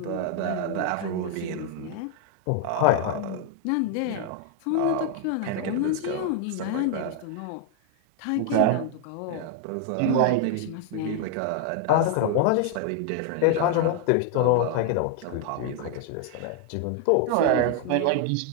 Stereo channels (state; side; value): different; both; correlation 0.00